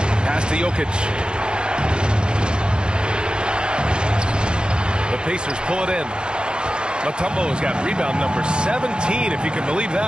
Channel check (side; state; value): left; late; 0.050 ms